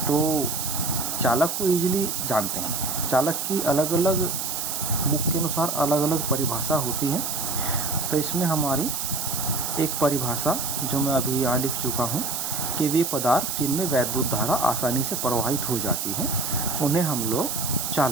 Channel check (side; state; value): right; noise; hiss, 2 dB below the sound